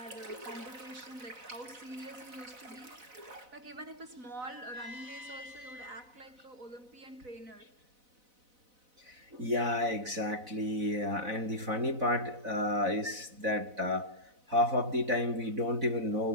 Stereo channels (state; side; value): late; left; 4.0 ms